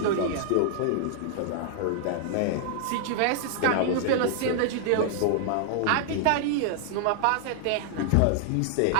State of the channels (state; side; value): different; both; correlation 0.00